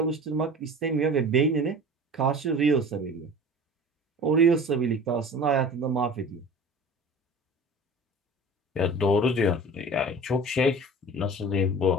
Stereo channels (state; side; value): normal; both; correlation 0.40